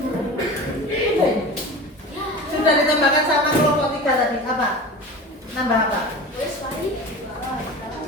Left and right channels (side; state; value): both; normal; correlation 0.33